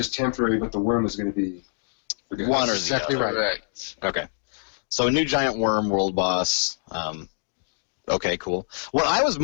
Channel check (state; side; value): silent; right; digital silence